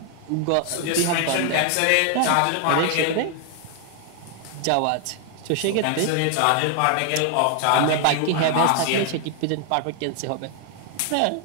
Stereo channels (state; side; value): different; both; correlation 0.00